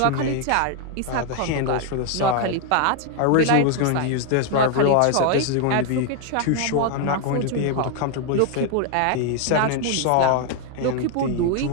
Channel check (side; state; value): both; different; correlation 0.01